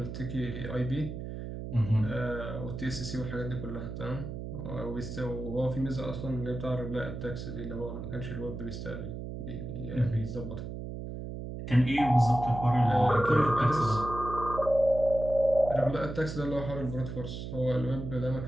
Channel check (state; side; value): noise; right; hum, 7 dB below the sound